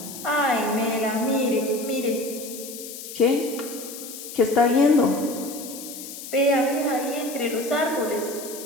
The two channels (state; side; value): noise; left; hiss, 11 dB below the sound